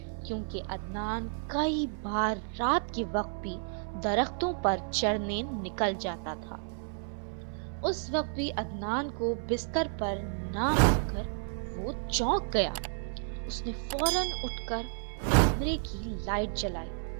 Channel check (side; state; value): left; silent; 57 dB below the other